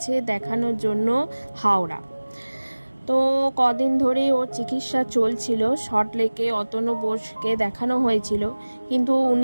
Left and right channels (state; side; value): inverted; both; correlation -1.00